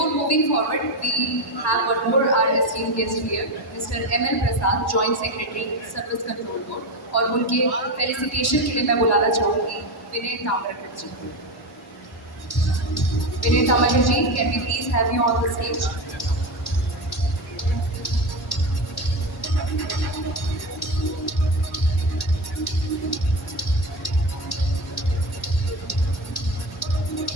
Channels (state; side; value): normal; both; correlation 0.18